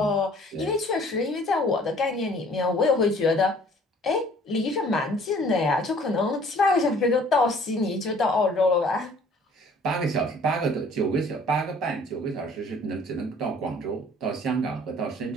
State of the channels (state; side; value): normal; both; correlation 0.54